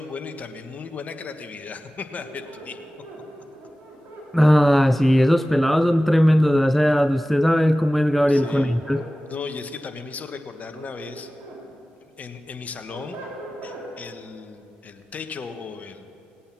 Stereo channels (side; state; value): both; normal; correlation 0.96